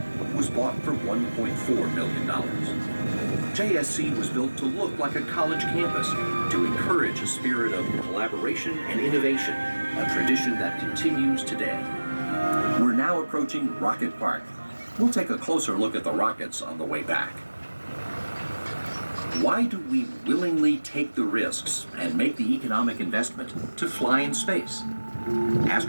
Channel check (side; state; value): both; inverted; correlation -1.00